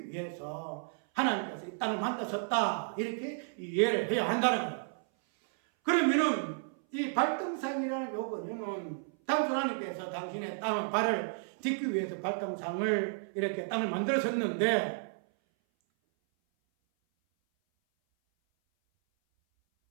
위해서 하나님께서 이 땅을 만드셨다. 이렇게 이해를 해야 한다는 거예요. 그러면은 이 발등상이라는 요거는 당초 하나님께서 당신의 발을 딛기 위해서 발등상을 이렇게 땅을 만들었었는데,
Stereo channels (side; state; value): left; silent; 56 dB below the other